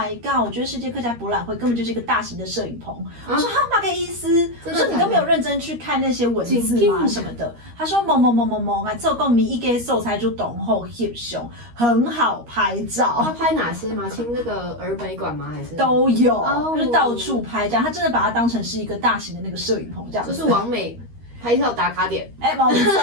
god！我覺得世界客家博覽會根本就是一個大型的攝影棚。我說他媽個意思？我說你都沒有認真去看那些文字嗎？什麼的？他說某，啊，這個咪一個素材就懂後翕相，很好拍照。他拍哪些嗎？清那個兒美館嗎？還是都有，就是到處拍這樣。他真的把它當成是一個大型的那個攝影棚這樣。就是網美拍照打卡點。冇錯。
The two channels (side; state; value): left; late; 13 ms